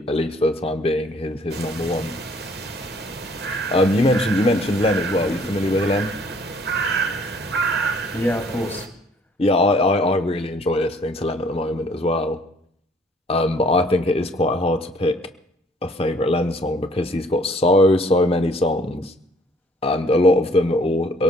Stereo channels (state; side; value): normal; both; correlation 0.59